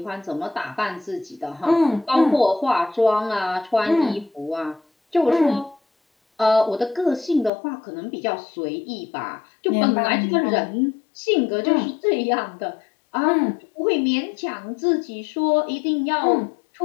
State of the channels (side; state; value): right; drops out; at 7.5 s